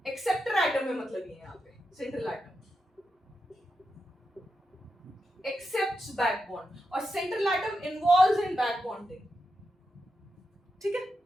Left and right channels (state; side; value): normal; both; correlation 0.87